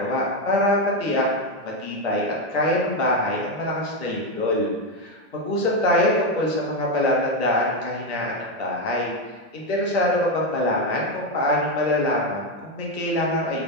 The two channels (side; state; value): left; late; 1.8 ms